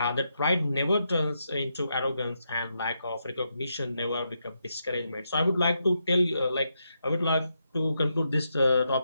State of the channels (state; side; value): inverted; both; correlation -0.83